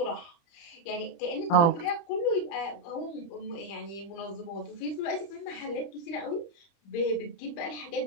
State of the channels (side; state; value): right; late; 30 ms